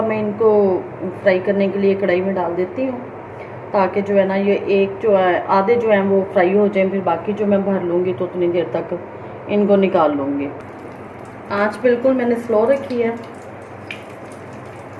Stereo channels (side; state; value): both; identical; correlation 1.00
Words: मैं इनको फ्राई करने के लिए कढ़ाई में डाल देती हूँ, ताकि जो है ना ये एक जो है आधे जो हैं वो फ्राई हो जाएं, फिर बाकी जो मैं भर लूँगी तो उतनी देर तक इनको निकाल लूँगी। आँच बिल्कुल मैंने स्लो रखी है।